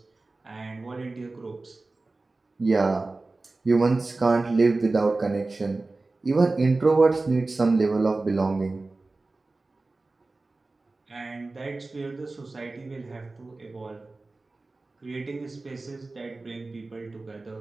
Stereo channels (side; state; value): left; quieter; 3.3 dB